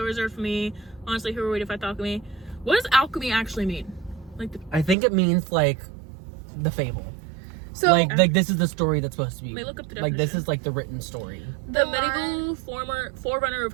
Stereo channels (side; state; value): left; drops out; at 5.0 s